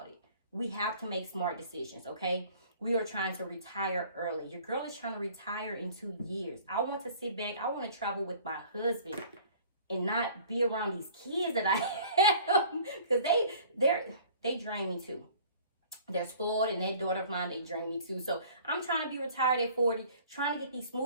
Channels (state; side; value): inverted; both; correlation -0.50